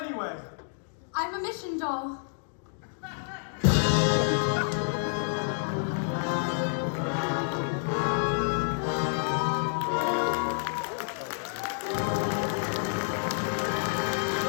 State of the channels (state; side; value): silent; right; digital silence